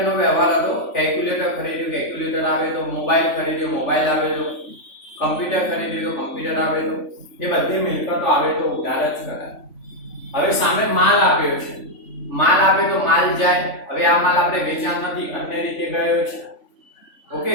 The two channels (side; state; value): right; late; 3.5 ms